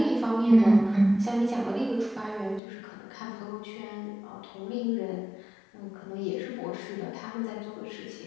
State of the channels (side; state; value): right; drops out; at 2.6 s